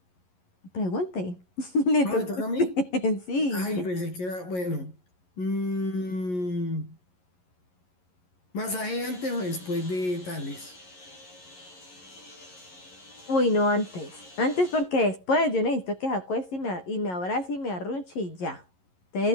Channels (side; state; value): right; late; 11 ms